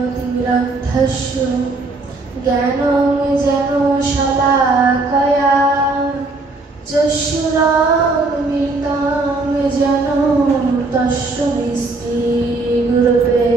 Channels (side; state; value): left; quieter; 3.4 dB